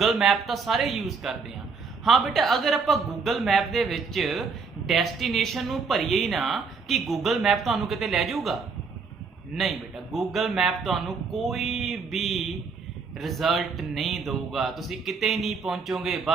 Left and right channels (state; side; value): quieter; left; 4.9 dB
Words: मैप तो सारे यूज़ करते हैं। हाँ बेटा, अगर आपां गूगल मैप दे विच डेस्टिनेशन नू भरीए ही ना कि गूगल मैप तुहानू किते लै जाऊगा, नहीं बेटा, गूगल मैप तुहानू कोई भी रिजल्ट नहीं दूगा, तुसी किते नहीं पहुंचोगे,